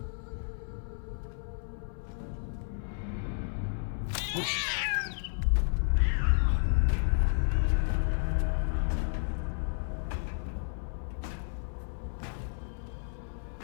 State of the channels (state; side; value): silent; right; 56 dB below the other